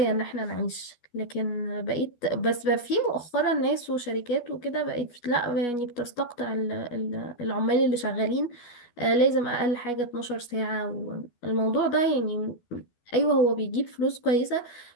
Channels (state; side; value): late; right; 12 ms